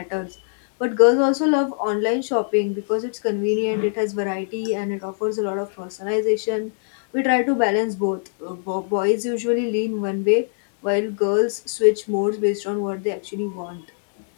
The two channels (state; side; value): silent; right; digital silence